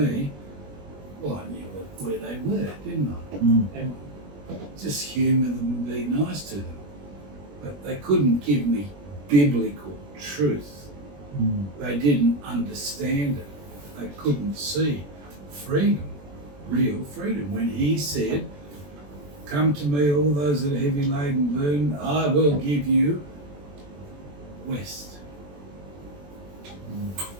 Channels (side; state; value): left; late; 21 ms